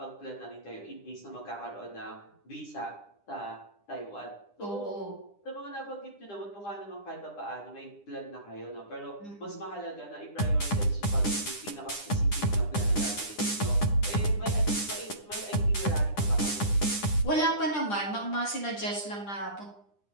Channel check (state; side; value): late; right; 9.9 ms